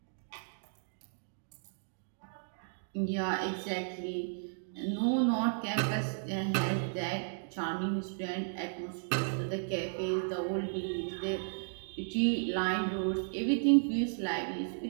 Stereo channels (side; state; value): left; silent; digital silence